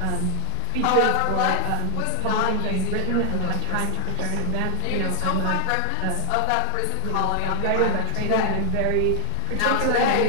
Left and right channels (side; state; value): both; different; correlation 0.00